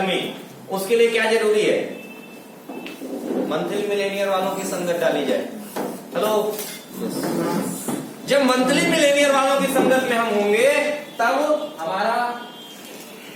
उसके लिए क्या जरूरी है? मंथली मिलेनियर वालों की संगत डाली जाए। हेलो, जब मंथली मिलेनियर वालों की संगत में हम होंगे तब हमारा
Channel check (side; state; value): both; identical; correlation 1.00